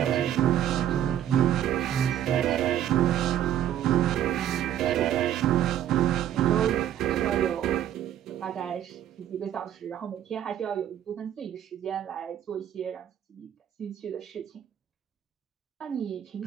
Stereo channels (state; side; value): quieter; left; 10.9 dB